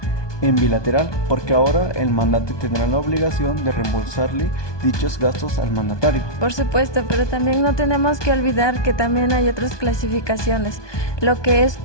en bilateral, porque ahora el mandante tendrá la obligación de reembolsarle dichos gastos al mandatario. Por supuesto, pero también no tenemos que olvidar que también hay otras clasificaciones, lo que es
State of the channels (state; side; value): late; right; 1.2 ms